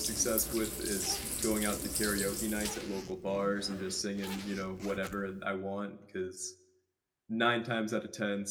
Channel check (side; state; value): both; identical; correlation 1.00